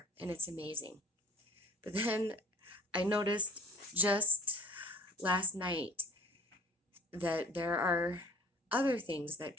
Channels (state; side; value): normal; both; correlation 0.52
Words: and it's amazing. But then I noticed just last night that there are other things that